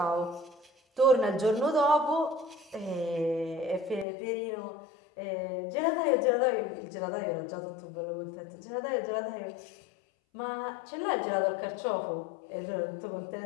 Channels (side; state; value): right; drops out; at 4.0 s